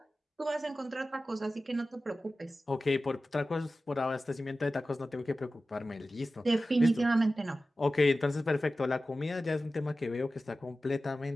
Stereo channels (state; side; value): normal; both; correlation 0.94